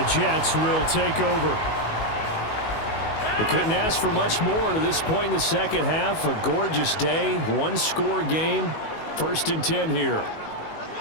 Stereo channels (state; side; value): late; right; 19 ms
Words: Jets will take over. We couldn't ask for much more to this point in the second half. A gorgeous day, one-score game. 1st and 10 here.